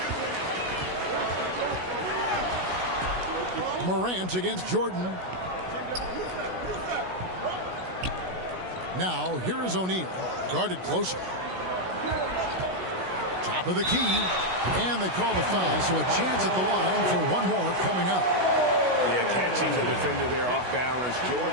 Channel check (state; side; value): late; left; 16 ms